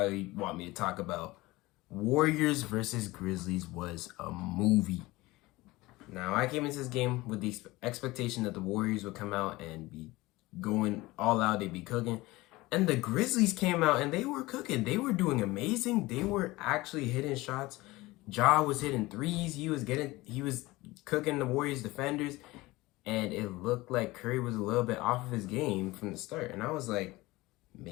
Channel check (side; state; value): right; quieter; 20.3 dB